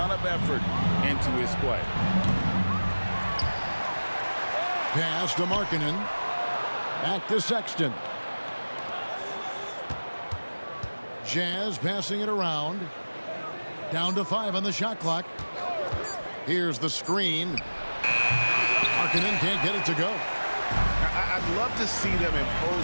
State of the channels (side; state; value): both; inverted; correlation -1.00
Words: of effort into his play. Pass to Markkanen. Back to Sexton. Jazz passing it around. Down to 5 on the shot clock. Here's the screen. Markkanen can't get it to go. I'd love to see them